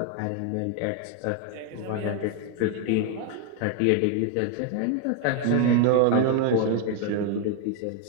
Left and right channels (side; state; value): both; different; correlation 0.01